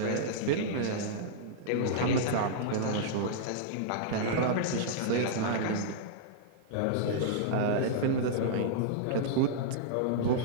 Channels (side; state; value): both; different; correlation -0.02